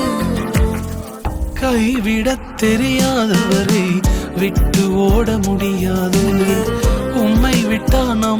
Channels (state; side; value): identical; both; correlation 1.00